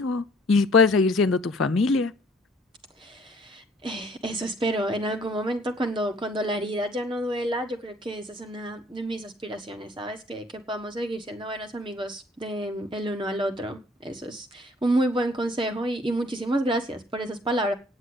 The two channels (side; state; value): both; normal; correlation 0.56